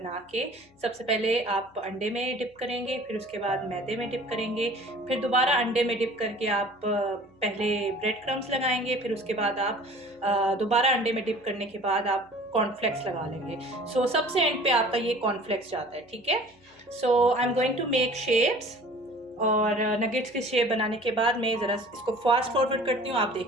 के, सबसे पहले आप अंडे में डिप करेंगे, फिर उसके बाद मैदे में डिप करेंगे, फिर दोबारा अंडे में डिप करके आप पहले ब्रेड क्रम्स लगाएंगे, फिर उसके बाद आप दोबारा अंडे में डिप करने के बाद आप कॉर्नफ्लेक्स लगा लेंगे। सो सबसे एंड पे आपका ये कॉर्नफ्लेक्स जाता है, ठीक है। So I am going to make shapes, और नगेट्स की शेप बनाने के बाद मैं ज़रा इसको फास्ट फॉरवर्ड करती हूँ, आप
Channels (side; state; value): left; noise; hum, 30 dB below the sound